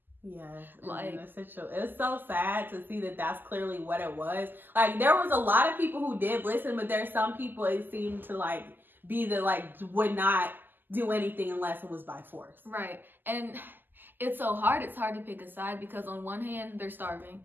Yes, like, it's so sad to see that that's clearly what it was. Like, there was a lot of people who did listen, but there's some people it seemed to like be the like would not do anything unless it was by force. Right. And it's so hard. It's hard to pick a side, because on one hand, they're starving.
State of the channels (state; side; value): late; left; 0.091 ms